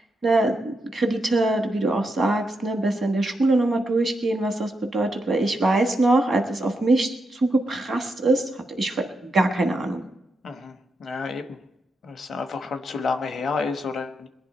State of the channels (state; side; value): normal; both; correlation 0.84